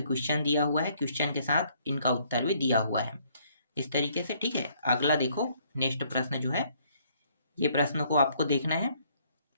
क्वेश्चन दिया हुआ है, क्वेश्चन के साथ इनका उत्तर भी दिया हुआ है इस तरीके से। ठीक है, अगला देखो, नेक्स्ट प्रश्न जो है, ये प्रश्न को आपको देखना है।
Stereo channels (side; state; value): both; inverted; correlation -0.65